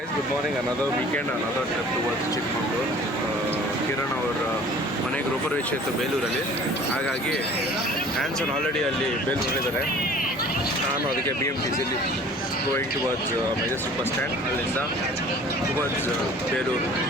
good morning. Another weekend, another trip towards Chikkamagaluru. Kiran ಅವರ ಮನೆಗೆ ಗೃಹಪ್ರವೇಶ ಇತ್ತು ಬೇಲೂರಲ್ಲಿ. ಹಾಗಾಗಿ ಆ್ಯನ್ಸನ್ ಆಲ್ರೆಡಿ ಅಲ್ಲಿ ಬೇಲೂರಲ್ಲಿದ್ದಾರೆ. ನಾನು ಅದಕ್ಕೆ BMTCಲಿ going towards Majestic bus stand, ಅಲ್ಲಿಂದ ಟುವರ್ಡ್ಸ್ ಬೇಲೂರು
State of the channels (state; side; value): normal; both; correlation 0.48